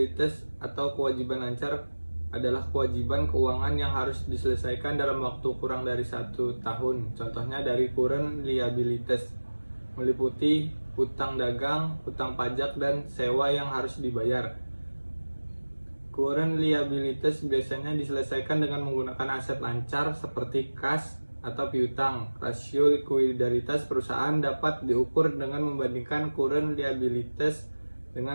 atau kewajiban lancar adalah kewajiban keuangan yang harus diselesaikan dalam waktu kurang dari 1 tahun. Contohnya dari current liabilitas meliputi hutang dagang, hutang pajak, dan sewa yang harus dibayar. Current liabilitas biasanya diselesaikan dengan menggunakan aset lancar seperti kas atau piutang. Rasio likuiditas perusahaan dapat diukur dengan membandingkan current liabilitas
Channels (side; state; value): both; inverted; correlation -1.00